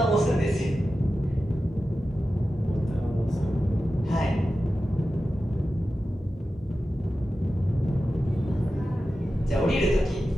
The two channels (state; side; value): normal; both; correlation 0.93